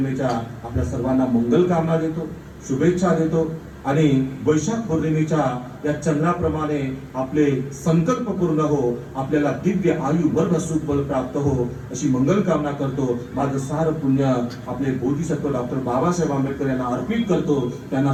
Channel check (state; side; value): identical; both; correlation 1.00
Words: आपल्या सर्वांना मंगल कामना देतो, शुभेच्छा देतो आणि वैशाख पौर्णिमेच्या या चंद्राप्रमाणे आपले संकल्प पूर्ण हो, आपल्याला दिव्य आयु वर्ग सुख बल प्राप्त हो, अशी मंगल कामना करतो. माझं सार पुण्य आपले बोधिसत्व डॉक्टर बाबासाहेब आंबेडकर यांना अर्पित करतो, त्यांना